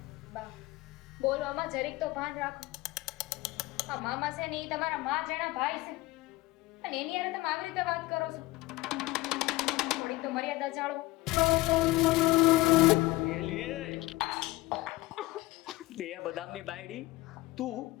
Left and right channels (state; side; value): quieter; right; 19.6 dB